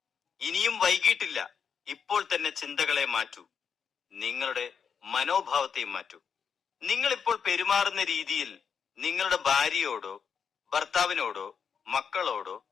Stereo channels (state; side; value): quieter; right; 6.7 dB